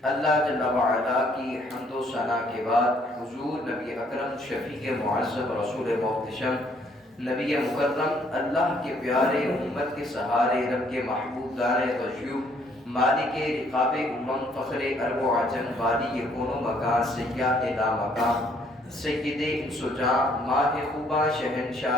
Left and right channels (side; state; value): both; normal; correlation 0.65